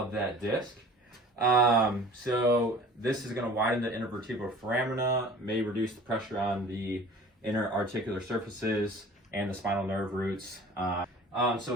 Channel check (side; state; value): both; normal; correlation 0.45